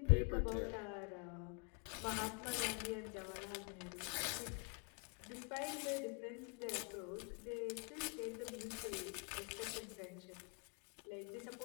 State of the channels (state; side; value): quieter; right; 36.7 dB